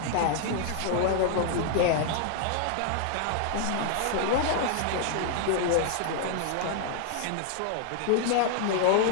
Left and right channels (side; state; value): both; different; correlation 0.00